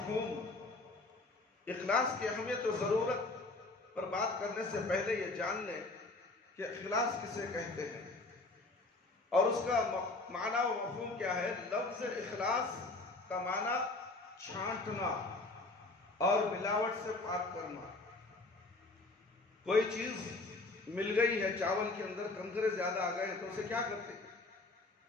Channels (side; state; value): right; quieter; 3.2 dB